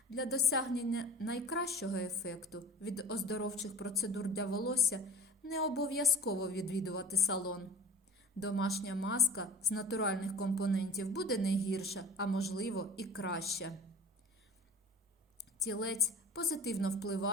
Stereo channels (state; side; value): normal; both; correlation 0.40